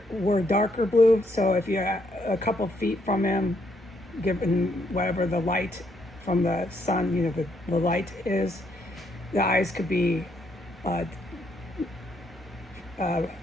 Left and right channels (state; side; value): normal; both; correlation 0.73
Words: darker blue. So if you're a couple feet from him, given whatever the light from the sun, the light is, the eyes could be uh,